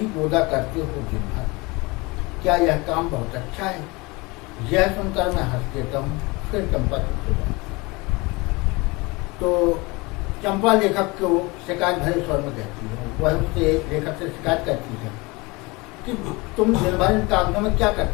बोदा करते हो दिन भर, क्या यह काम बहुत अच्छा है? यह सुनकर मैं हंस देता हूँ। फिर चंपा चुप हो जाती। तो चंपा लेखक को शिकायत भरे स्वर में कहती है, वह उससे लेखक से शिकायत करती है कि तुम दिन भर इन कागजों में क्या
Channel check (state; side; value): quieter; right; 24.8 dB